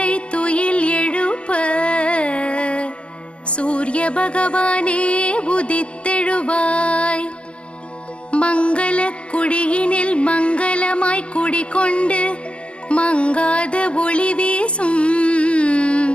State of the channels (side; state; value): right; late; 0.054 ms